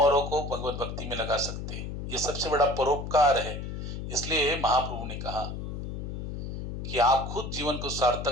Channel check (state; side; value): noise; left; hum, 6 dB below the sound